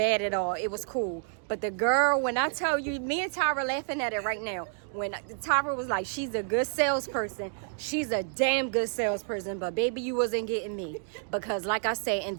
at all. It was cool. But the girl, when I tell you, me and Tyra laughing at it right now. When Tyra was like, she's a good salesperson. She's a damn good salesperson. But baby, you wasn't getting me. Because like I said, in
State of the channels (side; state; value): left; silent; 58 dB below the other